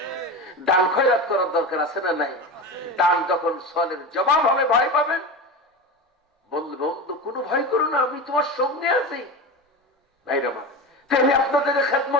দান খয়রাত করার দরকার আছে না নাই? দান যখন সওয়ালের জবাব হবে ভয় পাবেন, বলবে বন্ধু কোনো ভয় করো না, আমি তোমার সঙ্গে আছি। ভাইরা আমার, তাহলে আপনাদের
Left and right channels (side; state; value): both; normal; correlation 0.25